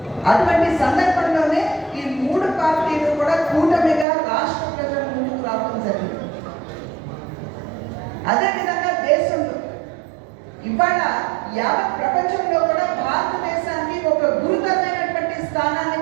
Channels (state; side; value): drops out; left; at 4.0 s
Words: అటువంటి సందర్భంలోనే ఈ 3 పార్టీలు కూడా కూటమిగా రాష్ట్ర ప్రజల ముందుకు రావడం జరిగింది. అదేవిధంగా దేశంలో ఇవాళ యావత్ ప్రపంచంలో కూడా భారతదేశానికి ఒక గురుతరమైనటువంటి స్థానాన్ని